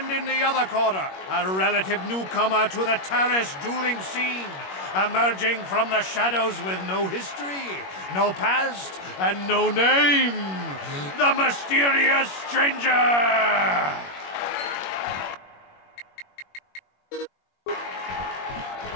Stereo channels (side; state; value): right; late; 21 ms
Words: in the other corner, a relative newcomer to the Taris dueling scene, emerging from the shadows with no history, no past, and no name, the mysterious stranger!